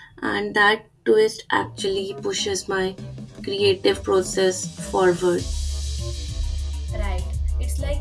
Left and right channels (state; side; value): identical; both; correlation 1.00